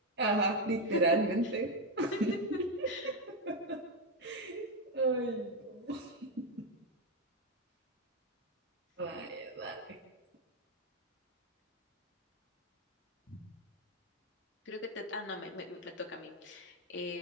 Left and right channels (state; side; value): normal; both; correlation 0.07